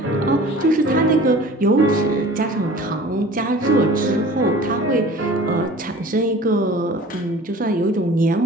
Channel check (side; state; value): both; normal; correlation 0.44